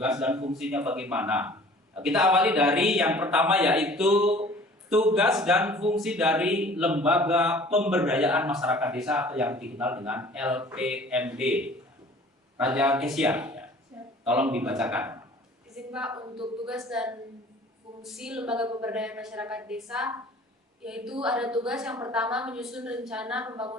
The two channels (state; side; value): normal; both; correlation 0.49